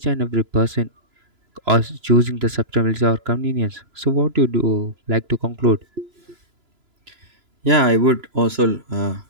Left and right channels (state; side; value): late; left; 3.0 ms